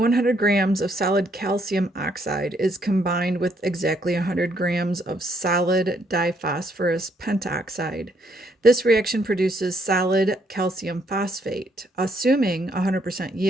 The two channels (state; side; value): normal; both; correlation 0.71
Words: grams of solid calcium oxide is combined with exactly 100 grams of solid diphosphorus pentoxide. This reaction produces solid calcium phosphate. Assuming 100%